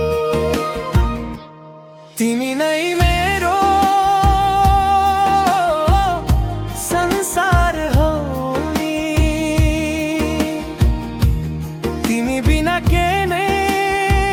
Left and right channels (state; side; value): identical; both; correlation 1.00